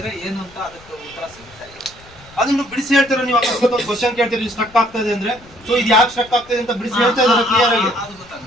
ಏನು ಅಂತ ಅದಕ್ಕೆ ಉತ್ತರ ಸಿಗುತ್ತೆ. ಅದನ್ನು ಬಿಡಿಸಿ ಹೇಳ್ತಾರೆ. ನೀವು ಅಕಸ್ಮಾತ್ ಒಂದು ಕ್ವಶನ್ ಕೇಳ್ತೀರಿ ಸ್ಟ್ರಕ್ ಆಗ್ತಾ ಇದೆ ಅಂದ್ರೆ, ಸೊ ಇದು ಯಾಕೆ ಸ್ಟ್ರಕ್ ಆಗ್ತಾ ಇದೆ ಅಂತ ಬಿಡಿಸಿ ಹೇಳ್ತಾ ಇದ್ದಾರೆ ಕ್ಲಿಯರ್ ಆಗಿ. ಅದು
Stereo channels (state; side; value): noise; left; rumble, 24 dB below the sound